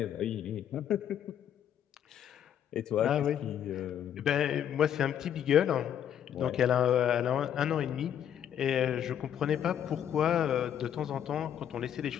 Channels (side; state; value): right; quieter; 9.6 dB